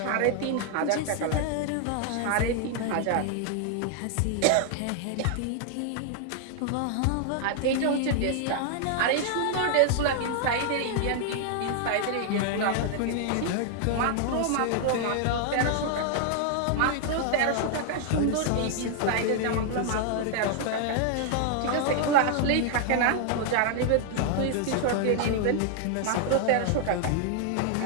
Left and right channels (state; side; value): different; both; correlation 0.00